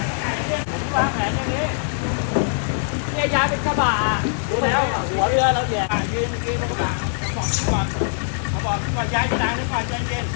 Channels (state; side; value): silent; right; digital silence